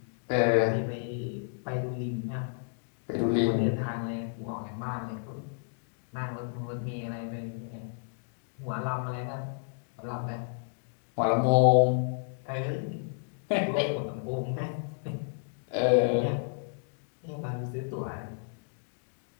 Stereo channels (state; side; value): silent; right; digital silence